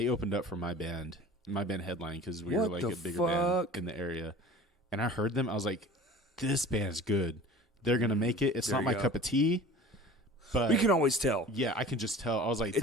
opened up for my band headline because we were What like the a bigger fuck? band in the area. And I heard them. I was like, this band's good. They're gonna make it. It's There not you my go. cup of tea, but We can always tell. yeah, I can just tell. I was like,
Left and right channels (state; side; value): normal; both; correlation 0.41